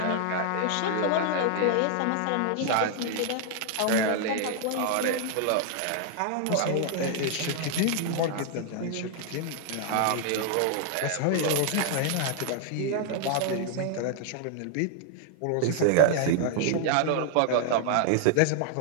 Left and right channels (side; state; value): both; different; correlation 0.00